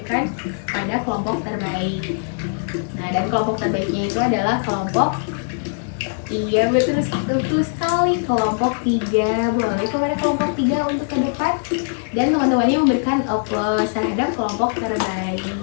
pada kelompok terbaik. Nah, dan kelompok terbaiknya itu adalah kelompok, iya betul sekali, kelompok 3. Boleh kepada kelompok 3 untuk ke depan dan teman-temannya memberikan aplaus terhadap kelompok terbaik.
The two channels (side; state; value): right; silent; 62 dB below the other